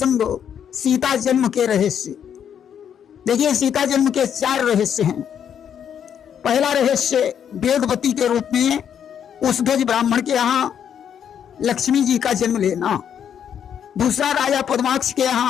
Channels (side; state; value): right; quieter; 8.6 dB